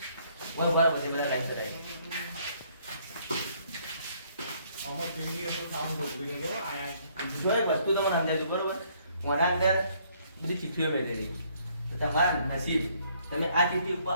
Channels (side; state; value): both; inverted; correlation -0.66